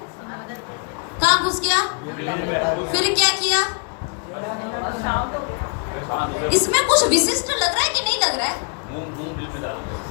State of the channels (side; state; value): right; quieter; 38.7 dB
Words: कहाँ घुस गया, फिर क्या किया? इसमें कुछ विशिष्ट लग रहा है कि नहीं लग रहा है?